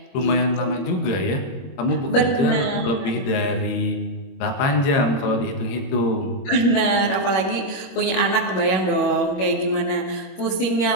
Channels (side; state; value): right; late; 22 ms